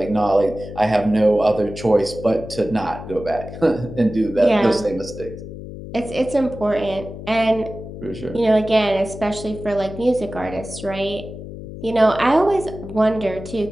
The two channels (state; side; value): noise; left; hum, 11 dB below the sound